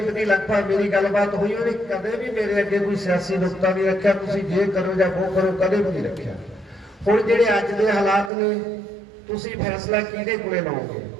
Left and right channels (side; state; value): left; drops out; at 8.3 s